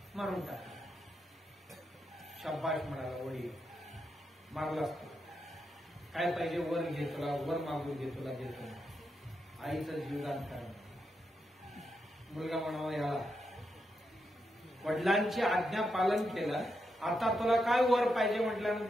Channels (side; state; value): both; normal; correlation 0.84